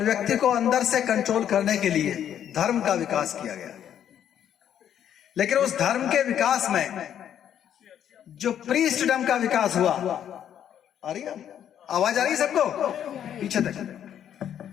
व्यक्ति को अंदर से कंट्रोल करने के लिए धर्म का विकास किया गया। लेकिन उस धर्म के विकास में जो प्रीस्टडम का विकास हुआ, आ रही है आवाज, आ रही है सबको पीछे तक,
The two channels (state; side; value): quieter; right; 9.8 dB